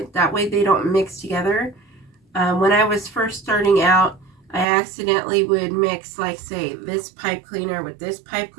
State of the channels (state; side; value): drops out; left; at 4.7 s